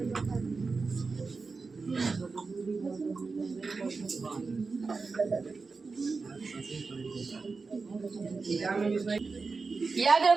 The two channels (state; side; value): quieter; left; 4.3 dB